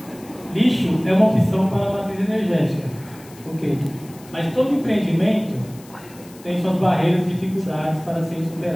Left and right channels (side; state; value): left; noise; hiss, 23 dB below the sound